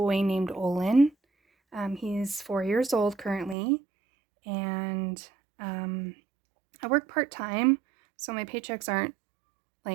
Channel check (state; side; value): drops out; left; at 3.6 s